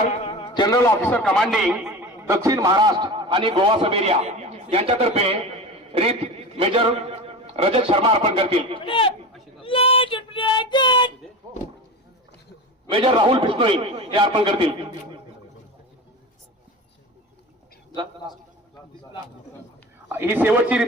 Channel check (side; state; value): both; normal; correlation 0.29